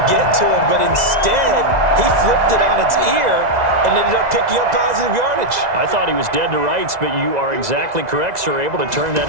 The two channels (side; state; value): left; late; 2.0 ms